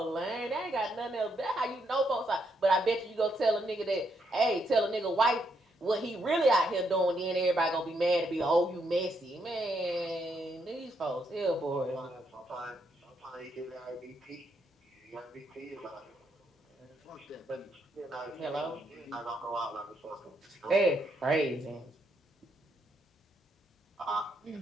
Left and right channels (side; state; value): both; normal; correlation 0.77